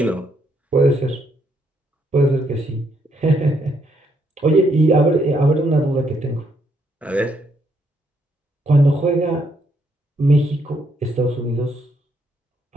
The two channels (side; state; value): both; normal; correlation 0.73